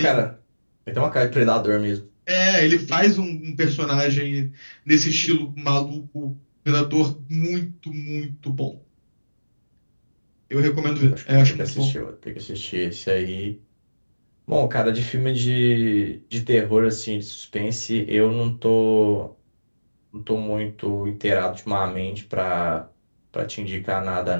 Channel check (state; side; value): inverted; both; correlation -1.00